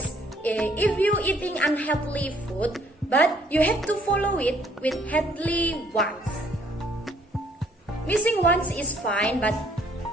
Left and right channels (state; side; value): normal; both; correlation 0.63